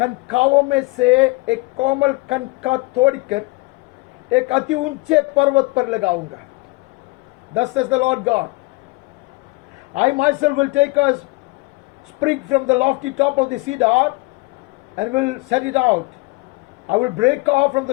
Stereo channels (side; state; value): right; quieter; 24.6 dB